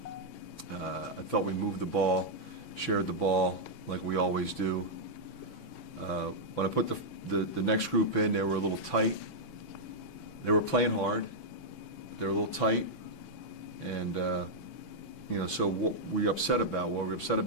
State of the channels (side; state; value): right; late; 6.1 ms